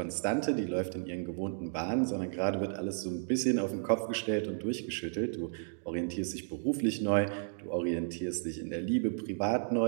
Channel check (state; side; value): silent; left; digital silence